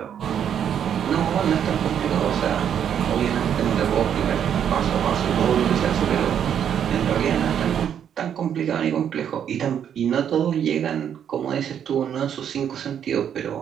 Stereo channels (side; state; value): left; quieter; 8.9 dB